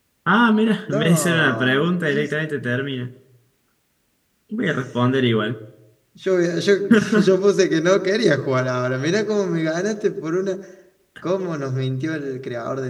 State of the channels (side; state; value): both; identical; correlation 1.00